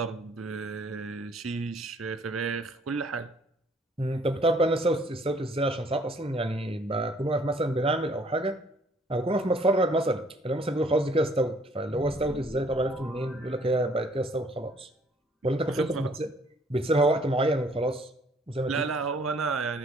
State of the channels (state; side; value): normal; both; correlation 0.61